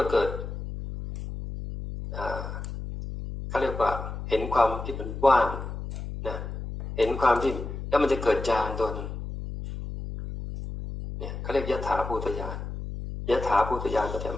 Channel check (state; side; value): noise; left; hum, 7 dB below the sound